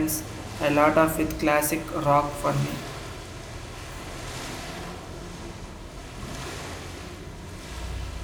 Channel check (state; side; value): identical; both; correlation 1.00